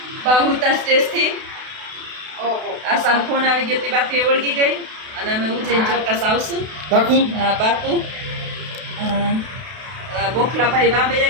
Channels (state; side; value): late; left; 32 ms